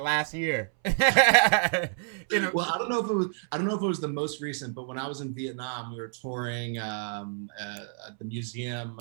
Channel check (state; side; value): silent; left; 59 dB below the other